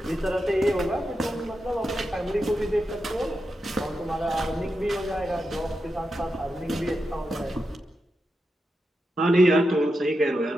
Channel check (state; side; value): normal; both; correlation 0.88